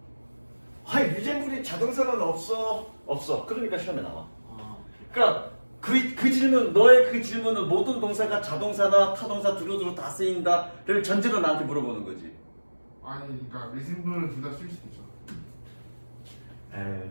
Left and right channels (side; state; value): both; inverted; correlation -1.00